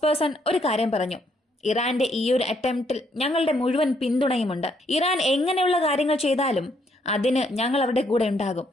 പേഴ്സൺ ഒരു കാര്യം പറഞ്ഞു: ഇറാന്റെ ഈ ഒരു അറ്റംപ്റ്റിൽ ഞങ്ങളുടെ മുഴുവൻ പിന്തുണയുമുണ്ട്. ഇറാൻ എങ്ങനെയുള്ള കാര്യങ്ങൾ ചെയ്താലും അതിന് ഞങ്ങൾ അവരുടെ കൂടെ ഉണ്ടാകും.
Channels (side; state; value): both; normal; correlation 0.71